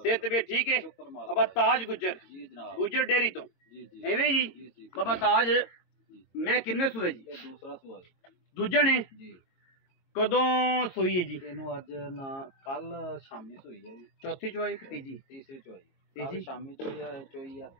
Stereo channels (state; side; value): late; right; 22 ms